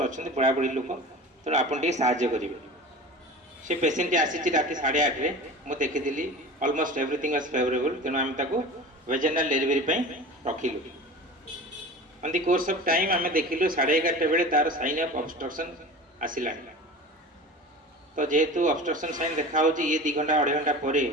पढ़ापढ़ी लोक तेणु आपड़ साज्य करेंगे से पेसेंट आसी रात 8:30 मुझे देखी अलमोस्ट एवरीथिंग वाज फेवरेबल तेणु आम वेजेनाल डेलीवरी रखिलु on the course of time आम देखिलु 11:30 बेले तार साइन ऑफ ऑब्स्ट्रक्शन आसला तो जेहेतु ऑब्स्ट्रक्शन साइन देखा ये 2 घंटा 2.5 घंटा पर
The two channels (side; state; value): both; normal; correlation 0.36